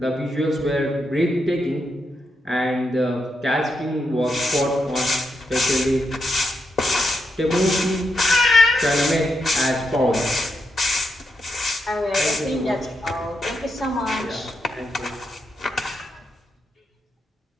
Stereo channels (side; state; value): both; normal; correlation 0.83